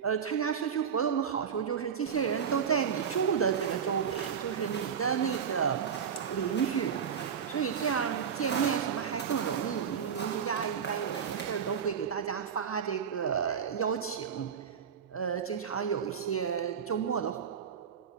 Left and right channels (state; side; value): quieter; left; 7.3 dB